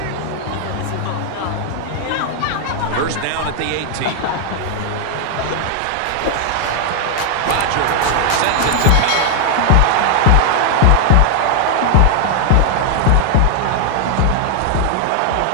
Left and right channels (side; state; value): both; different; correlation 0.00